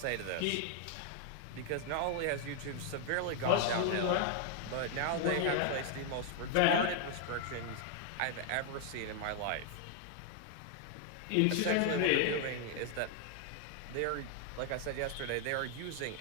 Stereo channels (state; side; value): different; both; correlation 0.00